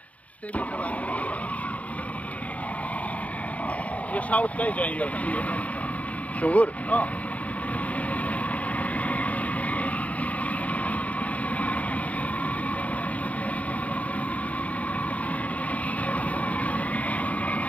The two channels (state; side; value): late; right; 0.069 ms